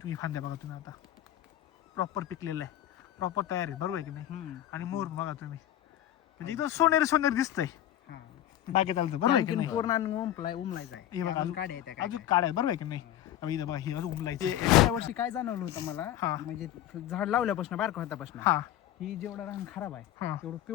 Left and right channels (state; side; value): quieter; right; 12.2 dB